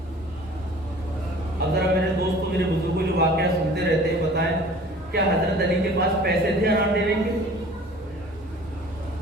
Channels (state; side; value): normal; both; correlation 0.47